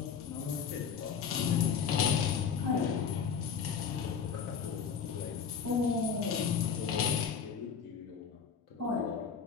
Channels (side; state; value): right; quieter; 6.7 dB